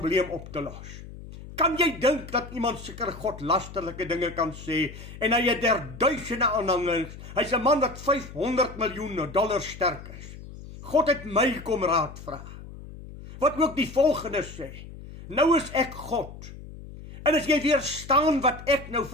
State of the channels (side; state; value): left; noise; hum, 14 dB below the sound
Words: op te los. Kan jy dink dat iemand seker God lasterlike dinge kan sê, en hy het duisende aanhangers, hy's 'n man wat $500 miljoen sterk is. God het my kom raad vra. Wat ook die volgende sê, nou is ek God. En as jy weer staan wat ek nou